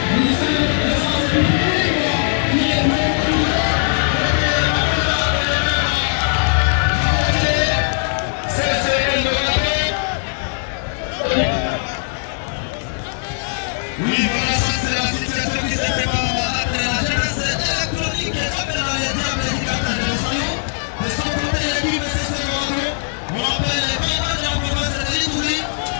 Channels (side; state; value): right; silent; digital silence